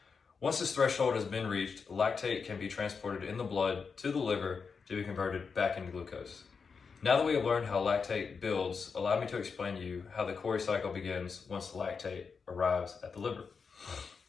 Once this threshold has been reached, lactate can be transported in the blood to the liver to be converted back into glucose. Now that we have learned how lactate builds, allow me to explain to you how the Cori cycle begins once the lactate arrives at the liver.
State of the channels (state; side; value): quieter; right; 5.4 dB